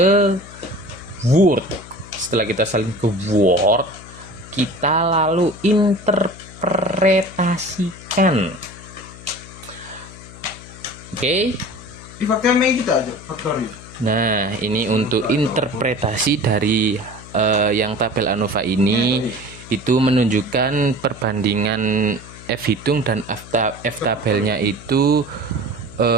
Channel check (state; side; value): noise; left; hum, 17 dB below the sound